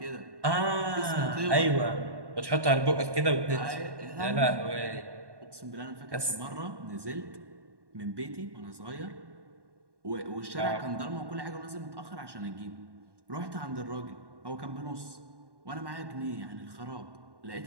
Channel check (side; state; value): left; late; 1.1 ms